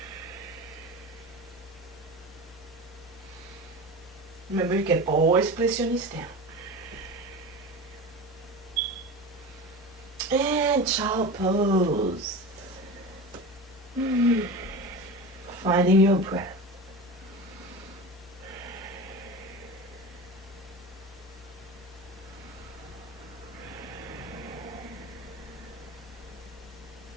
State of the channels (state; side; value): normal; both; correlation 0.29